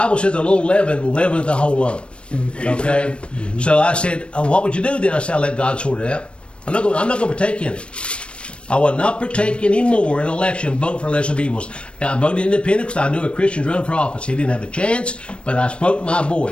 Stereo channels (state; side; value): late; right; 0.059 ms